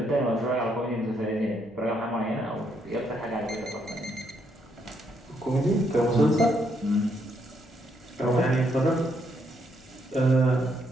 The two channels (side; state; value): left; noise; hum, 26 dB below the sound